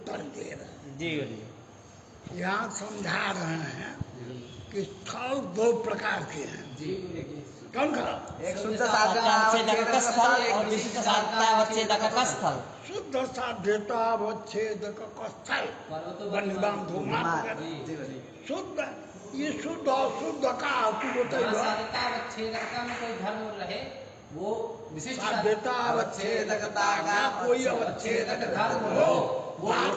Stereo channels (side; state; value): both; identical; correlation 1.00